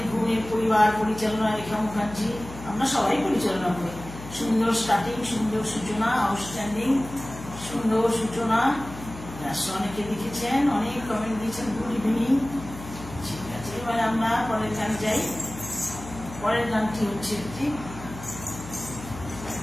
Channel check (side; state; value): left; noise; hum, 13 dB below the sound